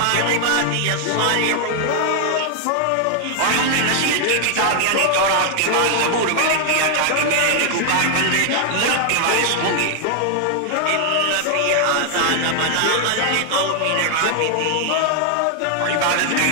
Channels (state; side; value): different; both; correlation 0.00